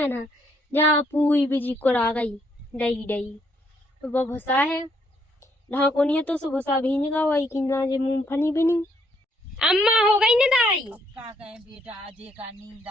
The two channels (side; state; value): both; normal; correlation 0.71